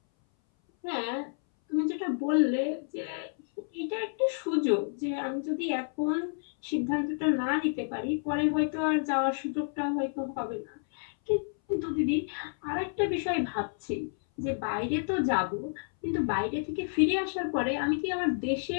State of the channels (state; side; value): silent; right; 58 dB below the other